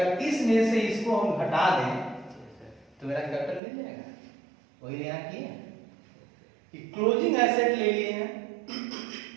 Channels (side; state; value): left; drops out; at 3.6 s